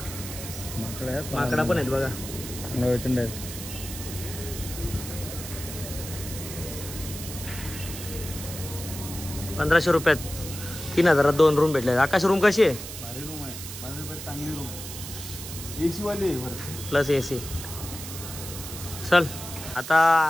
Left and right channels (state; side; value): noise; right; hiss, 10 dB below the sound